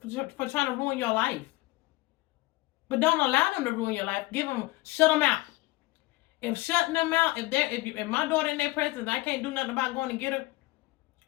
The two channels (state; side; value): quieter; right; 20.5 dB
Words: ruin your life. But don't allow them to ruin your life. Shut them out. If shutting them out, if my daughter in their presence, I can't do nothing about going to get her